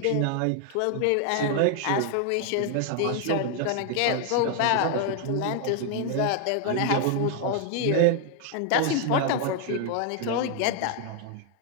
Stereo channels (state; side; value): different; both; correlation 0.00